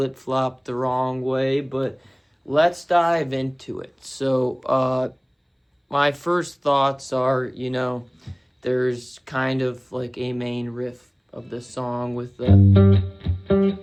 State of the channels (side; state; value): both; identical; correlation 1.00